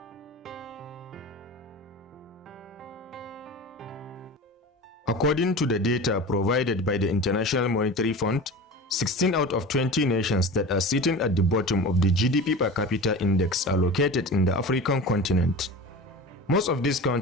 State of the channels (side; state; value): both; normal; correlation 0.32